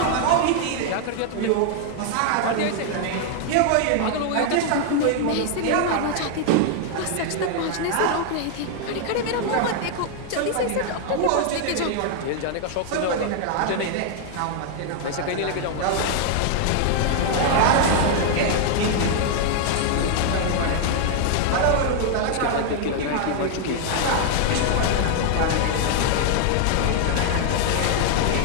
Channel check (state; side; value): different; both; correlation 0.00